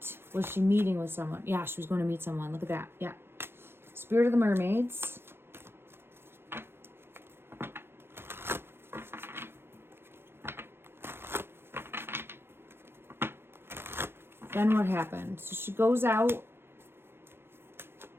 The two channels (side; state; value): left; late; 0.11 ms